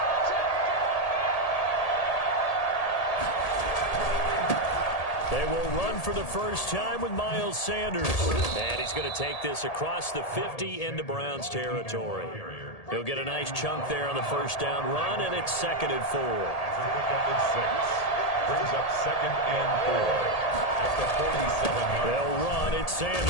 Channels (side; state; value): right; late; 1.8 ms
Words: They will run for the first time with Miles Sanders. And he's going to take this across the 50 into Browns territory. He'll get a nice chunk there on the first down run, and it's 2nd and 4. Brings up 2nd and 4 at the 47-yard line. They'll run. It's